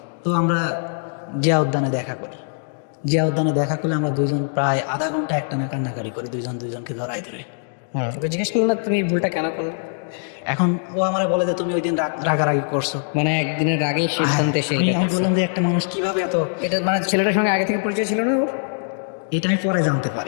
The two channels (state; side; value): silent; right; digital silence